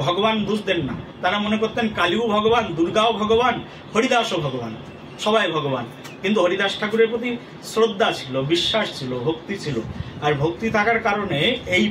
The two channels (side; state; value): both; identical; correlation 1.00